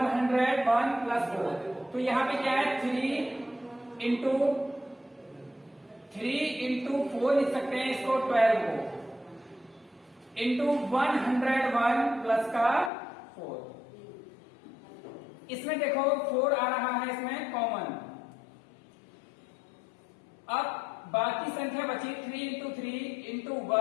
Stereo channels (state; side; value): drops out; right; at 12.9 s